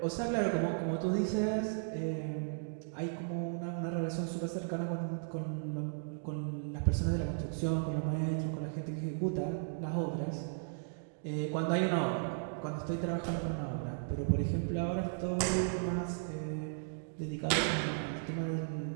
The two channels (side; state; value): left; silent; digital silence